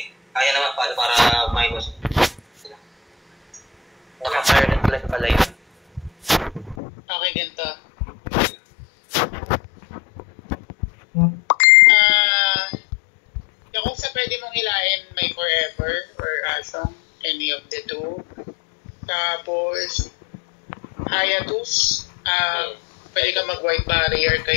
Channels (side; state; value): right; drops out; at 6.8 s